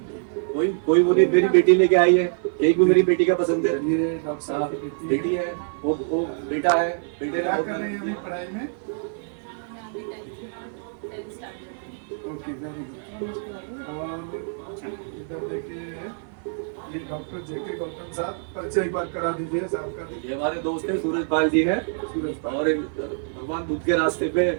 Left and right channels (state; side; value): silent; left; 56 dB below the other